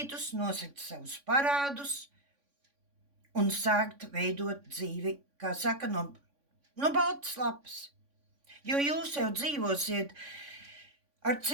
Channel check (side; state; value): left; late; 3.5 ms